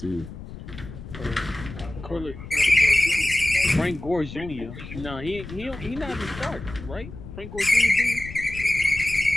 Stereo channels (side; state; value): left; noise; rumble, 13 dB below the sound